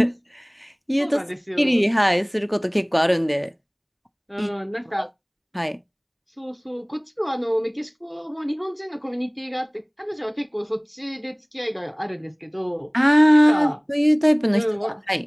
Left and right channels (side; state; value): both; identical; correlation 1.00